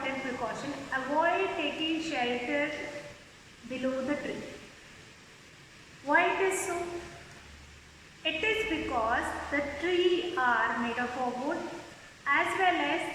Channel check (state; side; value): identical; both; correlation 1.00